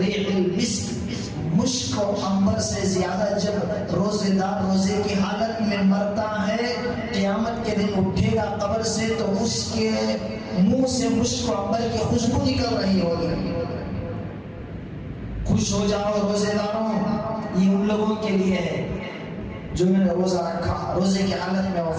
المسک، مشک و عنبر سے زیادہ جب روزے دار روزے کی حالت میں مرتا ہے، قیامت کے دن اٹھے گا قبر سے تو اس کے منہ سے مشک و عنبر کی خوشبو نکل رہی ہوگی۔ خوش ہو جاؤ روزے داروں، یہ ان لوگوں کے لیے ہے جو میں نے روزہ رکھا، روزے کی حالت میں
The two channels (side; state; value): both; identical; correlation 1.00